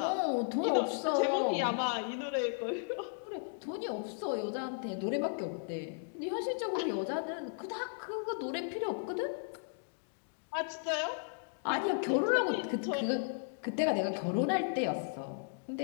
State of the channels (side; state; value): right; silent; digital silence